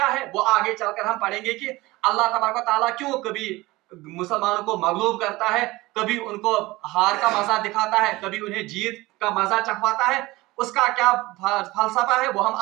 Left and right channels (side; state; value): left; quieter; 20.3 dB